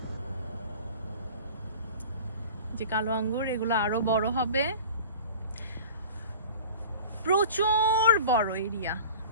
যে কালো আঙ্গুর, এগুলো আরো বড় হবে। প্রচুর বড় এরিয়া,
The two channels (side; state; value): both; inverted; correlation -0.40